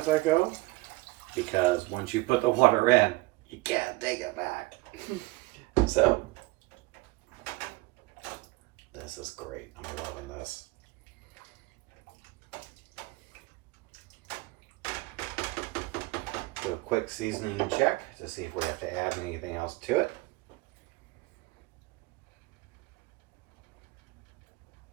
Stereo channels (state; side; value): quieter; left; 21.9 dB